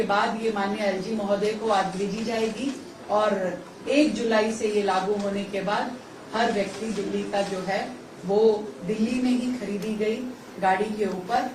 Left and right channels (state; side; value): identical; both; correlation 1.00